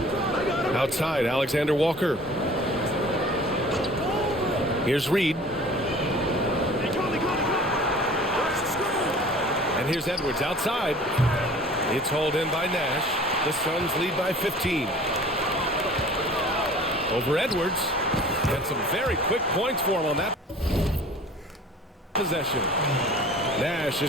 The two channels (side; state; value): both; normal; correlation 0.46